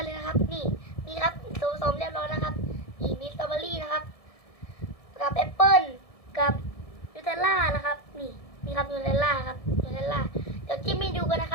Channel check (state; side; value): late; right; 1.7 ms